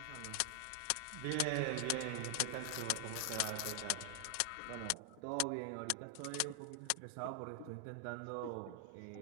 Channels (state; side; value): different; both; correlation 0.00